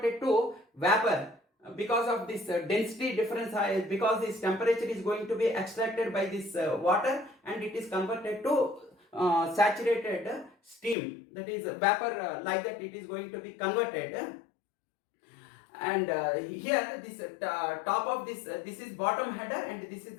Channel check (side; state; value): right; drops out; at 11.0 s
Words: it to vapor, because of this density difference, because this temperature is going to be extracted by this water, and it is converted to saturated steam, that is vapor, like that it is going to be converted. And here this top of this, this is bottom header, and this is